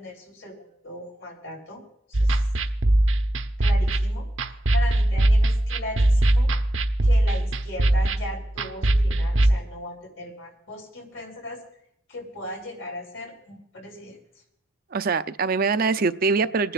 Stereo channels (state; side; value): normal; both; correlation 0.81